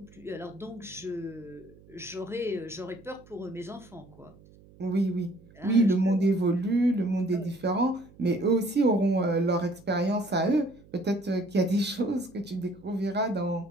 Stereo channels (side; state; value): right; noise; hum, 25 dB below the sound